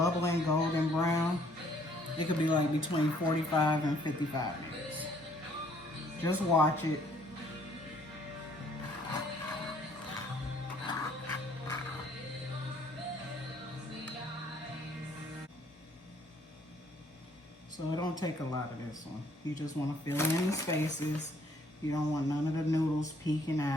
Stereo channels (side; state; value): both; normal; correlation 0.63